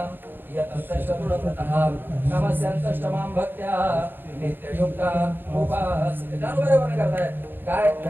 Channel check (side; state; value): left; late; 0.097 ms